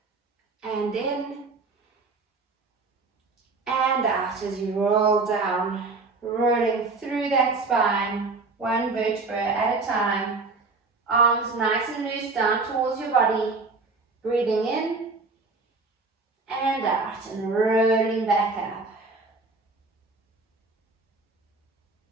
and in and out as you roll down, rolling through that spine, one vertebra at a time. Arms nice and loose down towards your body. Breathing in and out and rolling back up.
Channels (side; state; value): left; quieter; 3.8 dB